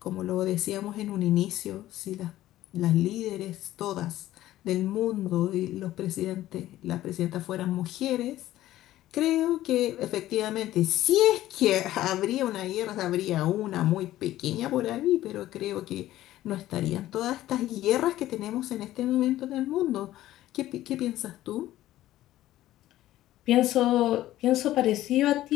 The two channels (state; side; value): quieter; right; 14.5 dB